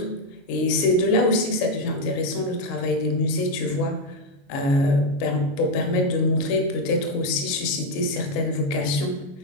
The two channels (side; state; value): right; late; 22 ms